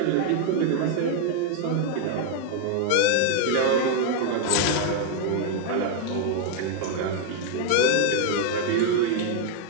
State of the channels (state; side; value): different; both; correlation 0.01